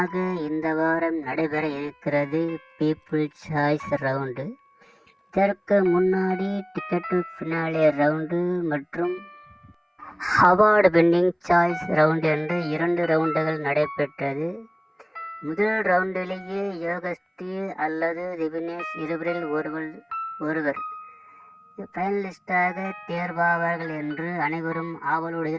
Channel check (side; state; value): both; identical; correlation 1.00